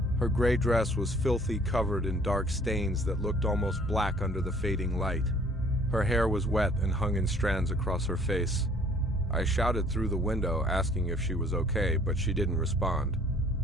Her gray dress was filthy, covered in dark stains that looked almost black under the fading light. Her hair was wet and hung in strands across her face. I shouted through the window, asking if she was okay, but she didn't respond.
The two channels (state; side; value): normal; both; correlation 0.56